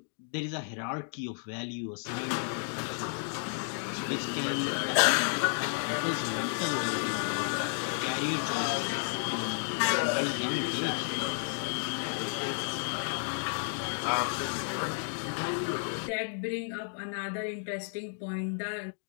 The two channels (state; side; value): silent; right; digital silence